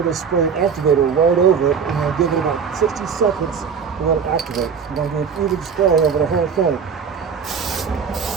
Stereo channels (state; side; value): quieter; left; 6.4 dB